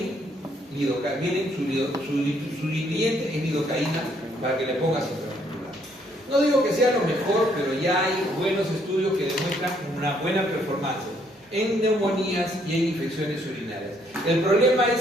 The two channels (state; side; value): normal; both; correlation 0.68